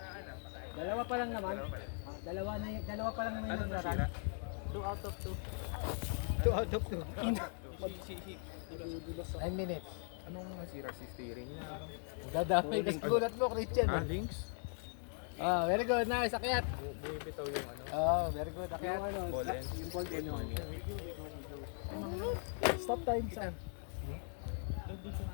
ah. Dalawa pa lang naman. Dalawa pa lang naman Ano yung na nagrarun. sira? 2 out of 2. 2 out of 2. 9 minutes. Anong nasira si steering niya? Dadamay ka sa gulat mo, Christian. Ah, links? Ah, very good. Nice. Akyat. Bumibitaw yung ano? Oh, very good. Akyat. Ball end. Yung ball end yung Stop time, Sam.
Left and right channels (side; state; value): right; silent; 51 dB below the other